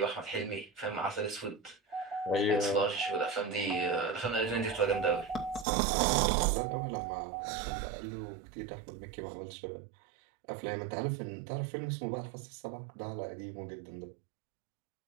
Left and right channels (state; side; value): drops out; left; at 5.7 s